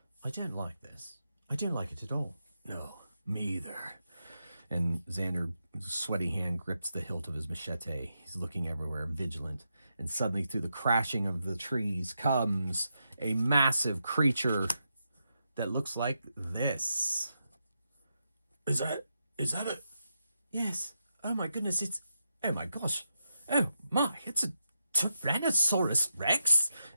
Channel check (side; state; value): both; inverted; correlation -0.85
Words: I don't like this. I don't like it at all. No, me either. And Xander's sweaty hand grips the hilt of his machete. He's looking everywhere, vigilant. And suddenly, through the crashing of the trees, comes a massive creature that looks like this. Is that a... Yes. Oh my goodness, oh my gosh. Oh my, it's a Tyrannosaurus Rex.